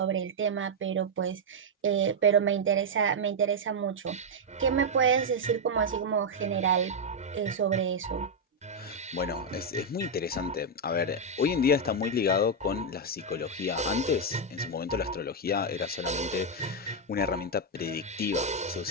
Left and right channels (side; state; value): both; normal; correlation -0.01